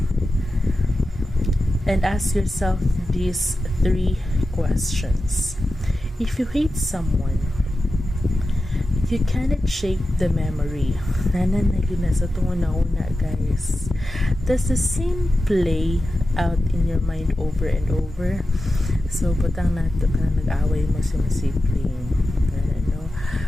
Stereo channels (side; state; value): both; normal; correlation 0.92